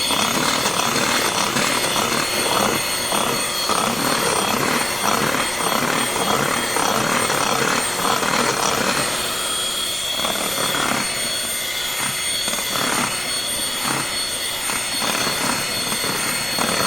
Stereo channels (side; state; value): right; noise; rumble, 19 dB below the sound